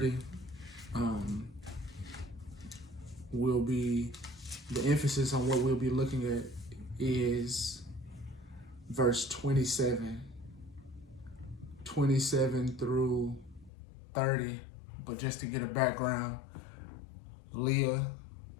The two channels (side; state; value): right; drops out; at 13.7 s